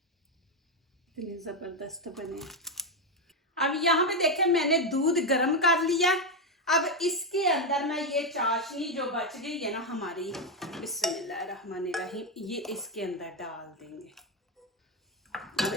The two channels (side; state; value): both; normal; correlation 0.06